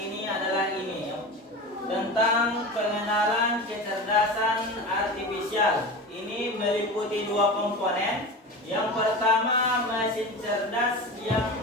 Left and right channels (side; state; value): both; normal; correlation 0.29